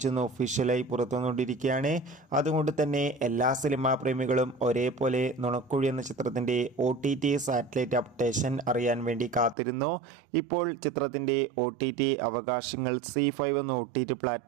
ഒഫീഷ്യലായി പുറത്തുവന്നുകൊണ്ടിരിക്കുകയാണ്. അതുകൊണ്ട് തന്നെ എല്ലാ സിനിമാ പ്രേമികളും ഒരേപോലെ നുണക്കുഴി എന്ന ചിത്രത്തിൻ്റെ OTT സാറ്റലൈറ്റ് അപ്ഡേഷൻ അറിയാൻ വേണ്ടി കാത്തിരുന്നു. ഇപ്പോൾ ചിത്രത്തിൻ്റെ OTT അവകാശങ്ങൾ C5 എന്ന OTT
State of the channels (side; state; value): left; drops out; at 9.6 s